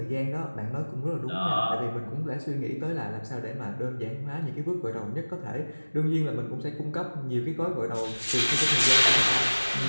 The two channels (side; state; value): both; inverted; correlation -1.00